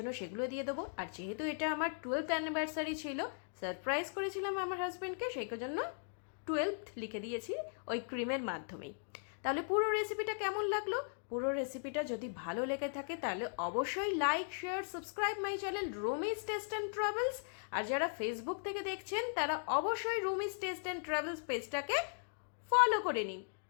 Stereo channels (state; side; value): silent; right; digital silence